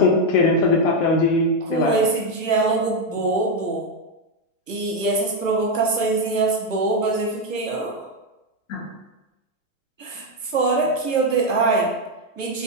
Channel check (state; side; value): late; right; 1.1 ms